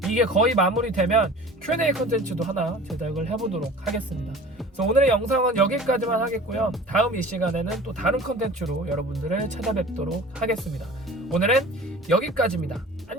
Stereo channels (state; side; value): normal; both; correlation 0.41